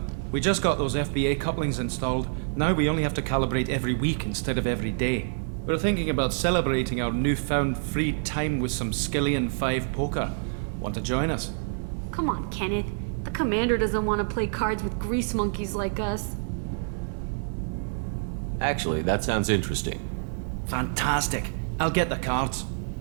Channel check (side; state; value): left; silent; digital silence